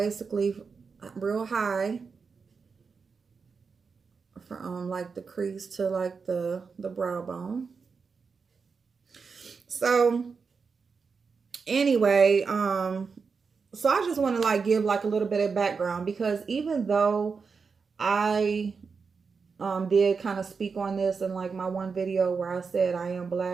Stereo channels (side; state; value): left; quieter; 5.2 dB